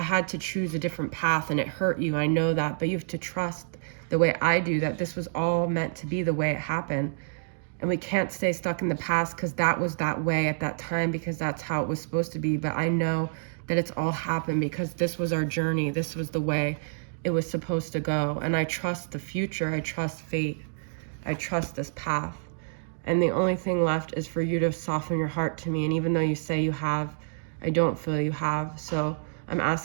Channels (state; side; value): silent; left; digital silence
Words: had to choose a different path and it hurt you. I know that, but you have to trust the way I do that this was all meant to be the way it happened. And we can't stay stuck in the past because that was that way at that time, because that's how it was supposed to be. But I know that it's all happened because this was our journey. This was the way it was supposed to go. And I trust the future. I trust fate. I trust this path. And the only thing left is for you to soften your heart to me. And even though you say you have, I don't feel you have. So I'm